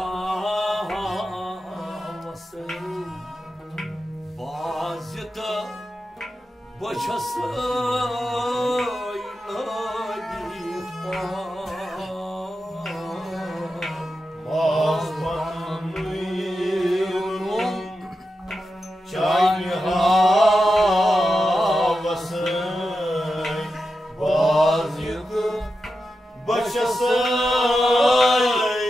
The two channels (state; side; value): normal; both; correlation 0.90